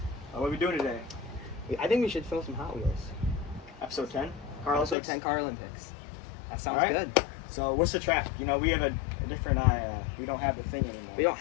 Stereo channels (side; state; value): right; drops out; at 5.0 s